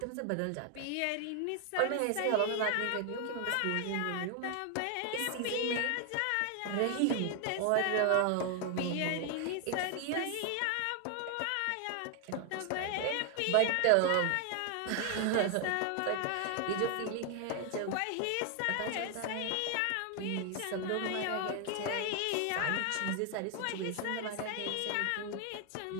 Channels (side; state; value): both; different; correlation 0.00